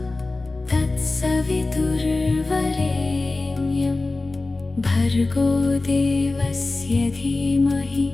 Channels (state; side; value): quieter; right; 3.3 dB